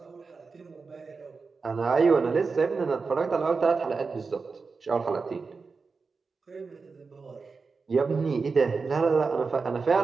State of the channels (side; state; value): left; quieter; 4.6 dB